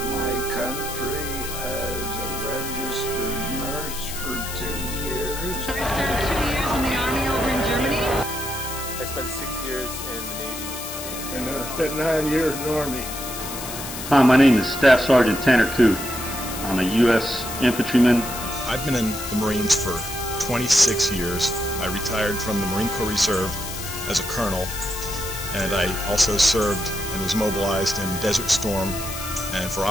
country as a registered nurse for 2 years. I served 2 years in the Army over in Germany. I spent 6 years in the Navy. And I spent 9 years in the Army. Hi, my name is Staff Sergeant Tanner Kuth. I'm a U.S. infantryman. I've been in the Marines for 26 years. I retired from the Marine Corps Reserve as a colonel, and I also served and was mobilized in Desert Storm and for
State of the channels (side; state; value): left; noise; hiss, 8 dB below the sound